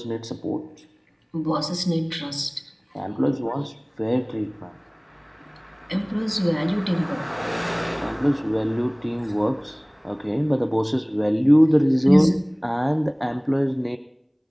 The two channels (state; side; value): identical; both; correlation 1.00